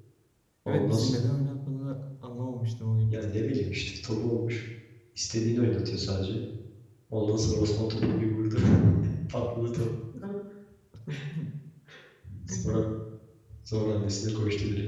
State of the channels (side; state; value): both; identical; correlation 1.00